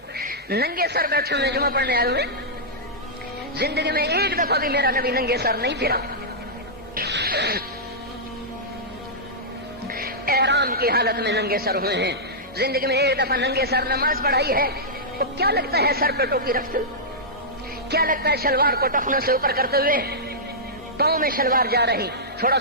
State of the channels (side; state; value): both; normal; correlation -0.12